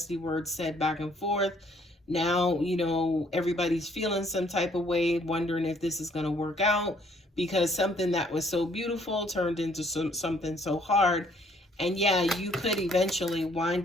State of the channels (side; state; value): both; normal; correlation 0.64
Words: words said back and forth. Now, everybody's feeling some type of way, wondering if this is going to work out because something that was so beautiful turned into something so hard. And yeah, you could eventually